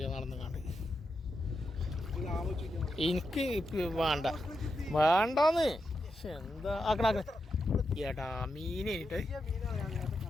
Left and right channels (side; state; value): both; normal; correlation 0.86